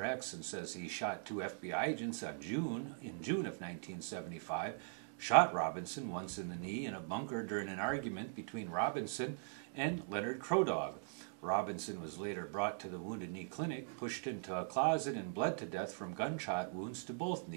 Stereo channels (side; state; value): left; silent; digital silence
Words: X and says he shot 2 FBI agents in June of 1975, shot Robinson once in the knee in a bunker during an argument between Robinson and Leonard Crodog. Robinson was later brought to the Wounded Knee Clinic, pushed into a closet, and bled to death from gunshot wounds to both